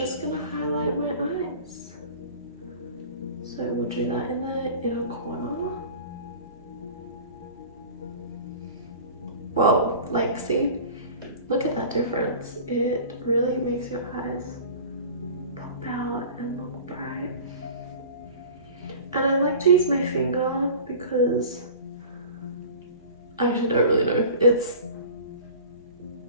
gonna highlight my eyes. So we'll do that in the inner corner. Whoa, like see, look at that difference. It really makes your eyes pop out and look bright. And I like to use my finger because I actually don't really know. It's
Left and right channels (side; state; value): both; inverted; correlation -0.40